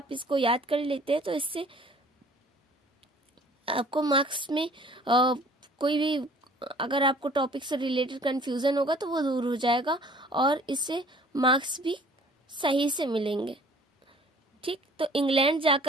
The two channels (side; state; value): both; normal; correlation 0.52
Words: इसको याद कर लेते हैं तो इससे आपको मार्क्स में कोई भी अगर आपको टॉपिक से रिलेटेड कंफ्यूजन होगा तो वो दूर हो जाएगा और इससे मार्क्स भी सही से मिलेंगे। ठीक, तो इंग्लैंड